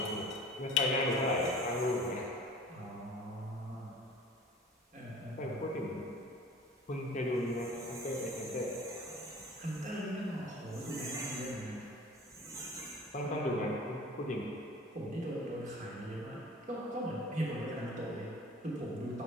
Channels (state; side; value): normal; both; correlation 0.45